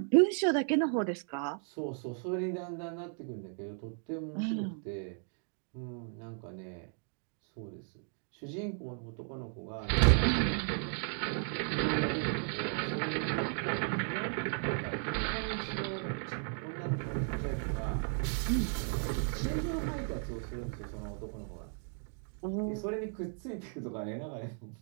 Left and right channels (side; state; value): left; silent; 54 dB below the other